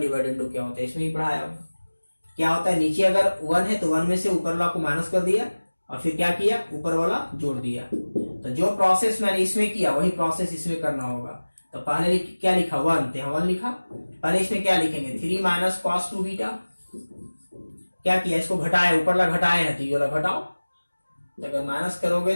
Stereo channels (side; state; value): both; inverted; correlation -1.00